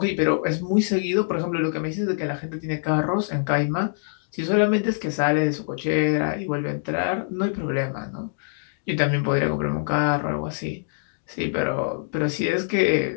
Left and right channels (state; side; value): silent; right; digital silence